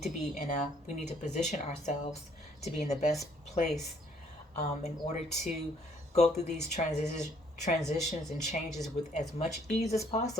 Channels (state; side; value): normal; both; correlation 0.64